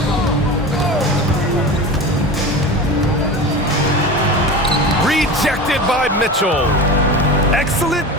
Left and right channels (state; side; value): normal; both; correlation 0.29